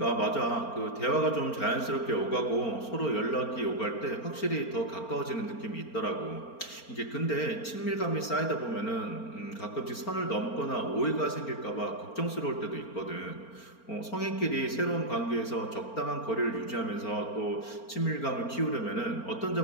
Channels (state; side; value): late; right; 4.4 ms